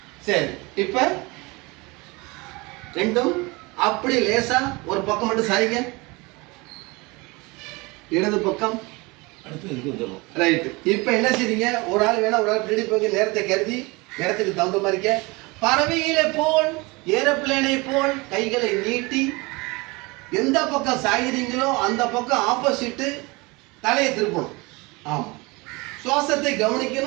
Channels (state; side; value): quieter; left; 25.1 dB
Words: சரி, இப்போ ரெண்டும் அப்படி லேசா ஒரு பக்கம் மட்டும் சாய்ங்க. இடது பக்கம் ரைட்டு. இப்போ என்ன செய்றீங்க? ஒரு ஆள் வேணா ஒரு ஆள் பின்னாடி போய் நேரத்தை கருதி நேரத்துக்கு தகுந்த மாதிரி பறவைகளை போல் ஏரோப்ளேனை போல் கைகளை நீட்டி எந்த பக்கம் சாகிறீங்களோ அந்த பக்கம் ஆப்போசிட்டு தலையை திருப்பணும். ஆமாம், சுவாசத்தை